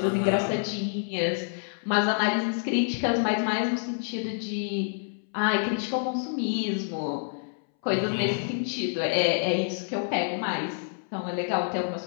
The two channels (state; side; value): silent; right; 60 dB below the other